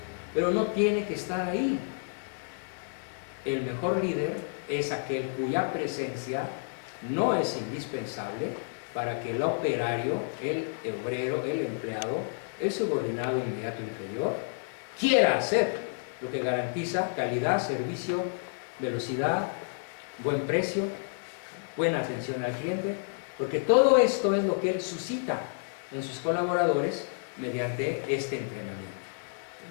pero no tiene que estar ahí. El mejor líder es aquel cuya presencia no es indispensable para que el operario, el obrero, el empleado, el subordinado inmediato inferior quiera hacer, lo que garantiza calidad, servicio, velocidad, buen precio, buena atención al cliente, porque todo esto es lo que él suscita en sus colaboradores mediante este entrenamiento.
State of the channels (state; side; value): silent; right; digital silence